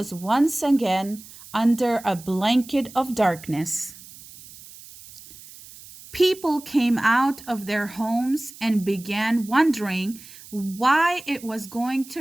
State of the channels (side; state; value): right; noise; hiss, 19 dB below the sound